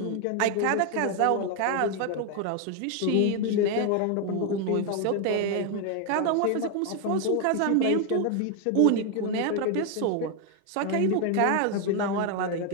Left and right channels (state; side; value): different; both; correlation 0.01